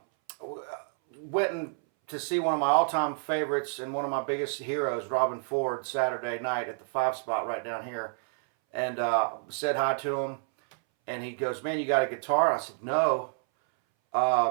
Went to see one of my all-time favorites and one of my biggest heroes, Robin Ford, Saturday night at the 5 Spot right down here. And said hi to him, and he goes, "Man, you got a guitar?" And I said, "No,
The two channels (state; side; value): silent; left; 59 dB below the other